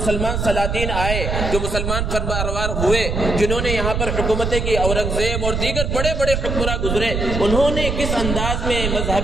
سلاطین آئے، جو مسلمان فرمانروار ہوئے، جنہوں نے یہاں پر حکومتیں کی، اورنگزیب اور دیگر بڑے بڑے حکمراں گزرے، انہوں نے کس انداز میں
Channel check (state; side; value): noise; right; rumble, 1 dB below the sound